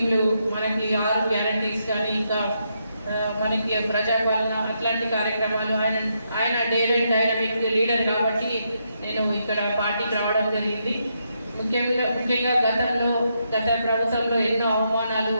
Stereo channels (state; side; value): inverted; both; correlation -0.80